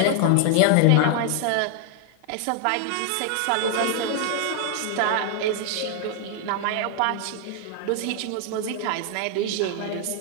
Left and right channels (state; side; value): different; both; correlation 0.00